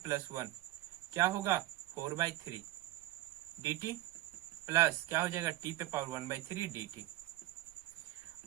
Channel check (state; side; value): quieter; left; 16.2 dB